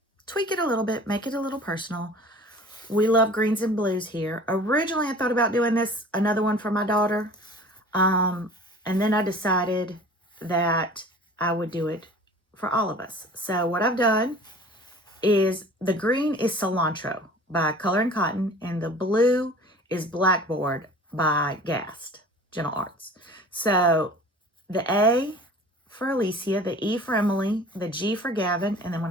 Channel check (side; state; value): both; normal; correlation 0.44